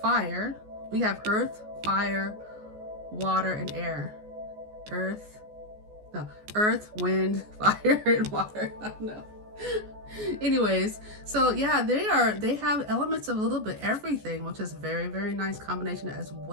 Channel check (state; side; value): late; left; 14 ms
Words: We have earth, fire, water, and air. Earth, wind, fire, and water. I don't know. Anyways, so yeah, they have elements of a little bit everything, which is very, very nice combination as